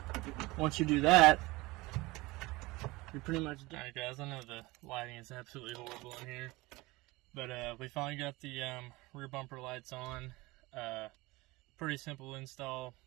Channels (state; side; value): quieter; left; 21.7 dB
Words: once you do that, you're pretty much done. Alright guys, I know the lighting is absolutely horrible in here, but we finally got the rear bumper lights on. Pretty simple install,